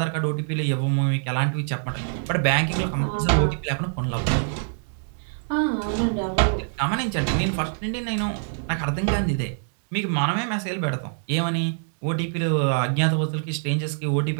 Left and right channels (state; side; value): silent; left; digital silence